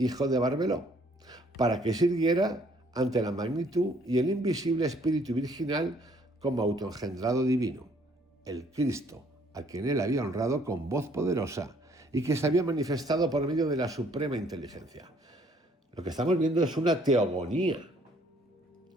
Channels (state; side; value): normal; both; correlation 0.63